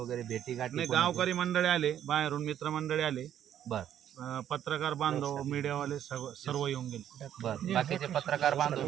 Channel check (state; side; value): quieter; left; 10.5 dB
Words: भेटी गाठी? गावकरी मंडळी आले, बाहेरून मित्रमंडळी आले, बरं, पत्रकार बांधव, मीडियावाले सर्व येऊन गेले. बरं, बाकीचे पत्रकार बांधव,